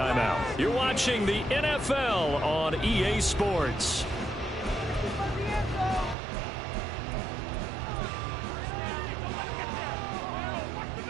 You're watching the NFL on EA Sports.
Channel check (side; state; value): left; drops out; at 6.2 s